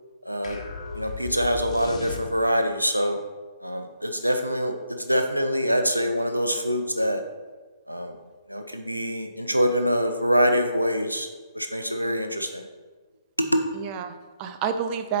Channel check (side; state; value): both; inverted; correlation -0.81